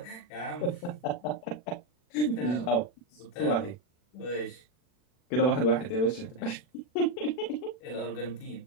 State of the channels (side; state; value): right; late; 40 ms